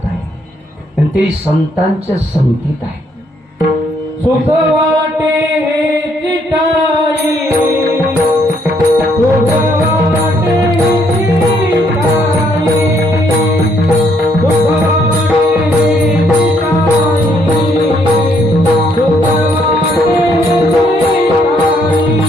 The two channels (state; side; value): normal; both; correlation 0.70